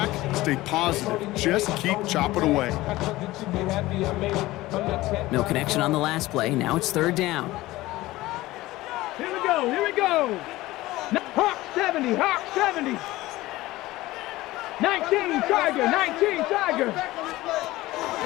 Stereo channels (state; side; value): quieter; right; 18.0 dB